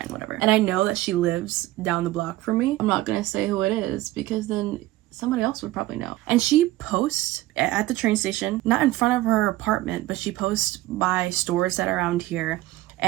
whatever. And I know that she lives down the block from me. I'm not gonna say who it is because then somebody else would probably know. And she posts at the train station, not in front of her apartment, but she posts by stores that are around here.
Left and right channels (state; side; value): quieter; left; 17.1 dB